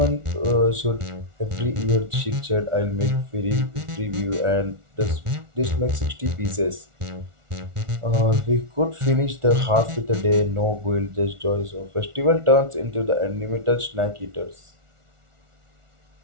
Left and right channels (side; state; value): left; late; 1.4 ms